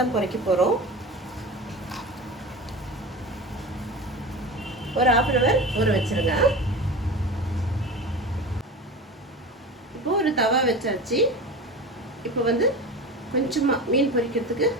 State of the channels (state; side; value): normal; both; correlation 0.30